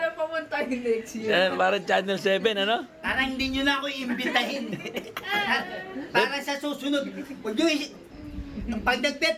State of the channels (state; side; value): identical; both; correlation 1.00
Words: na pumunta yung next year. parang Channel 7, ano? Parang hindi nyo na ako iimbitahin. Para sa susunod. Huwag nyo pag